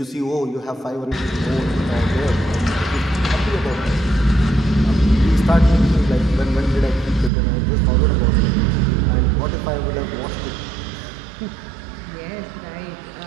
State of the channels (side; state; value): left; drops out; at 7.3 s